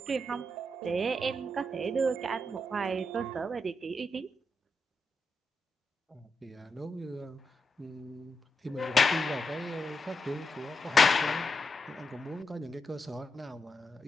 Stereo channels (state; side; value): normal; both; correlation 0.85